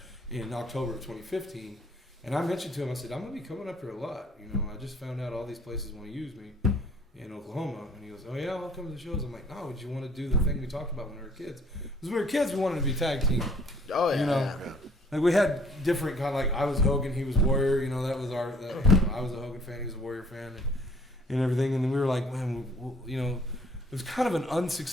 in October of 2015, and I mentioned to him, I said, I'm going to be coming up here a lot. You know, I just found out all these places want to use me in Oklahoma, and he goes, oh yeah, I'll come to the shows. I'm like, no, would you want to do the thing we talked about when we were kids? Because when we were kids, we wanted to be tag team. Oh yeah. You know, yeah. like we had different kind of like I was Hogan, he was Warrior. You know, that was our. I was a Hogan fan, he was a Warrior fan, and everything. And then we were like, man, you know, it was kind of an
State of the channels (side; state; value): both; normal; correlation 0.58